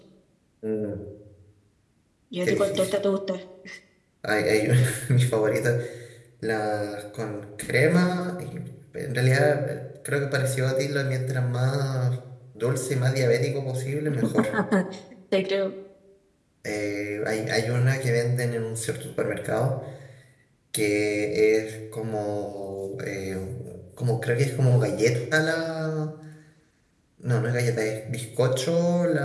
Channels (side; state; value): both; identical; correlation 1.00